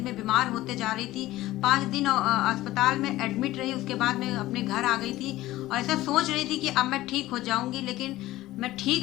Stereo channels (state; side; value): quieter; right; 16.5 dB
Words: बीमार होते जा रही थी। 5 दिन अस्पताल में एडमिट रही, उसके बाद मैं अपने घर आ गई थी। और ऐसा सोच रही थी कि अब मैं ठीक हो जाऊंगी, लेकिन मैं